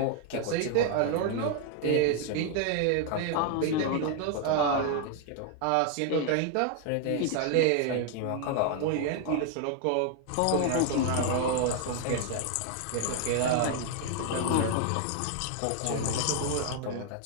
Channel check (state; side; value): different; both; correlation 0.00